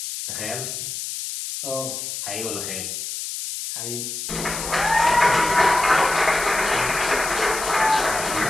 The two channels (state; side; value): noise; left; hiss, 6 dB below the sound